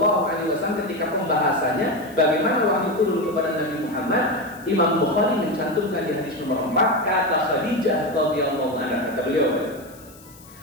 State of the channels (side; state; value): left; noise; hiss, 23 dB below the sound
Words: alaihi wasallam, ketika pembahasannya bagaimana wahyu turun kepada Nabi Muhammad, Imam Bukhari mencantumkan di hadis nomor 4 kata Khadijah radhiyallahu anha, kata beliau,